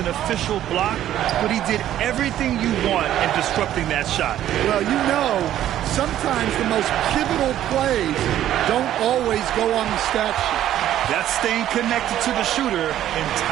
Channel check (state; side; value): quieter; left; 12.1 dB